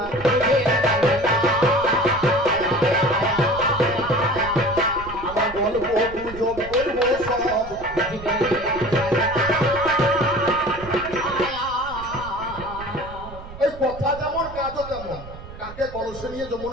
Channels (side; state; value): right; noise; rumble, 14 dB below the sound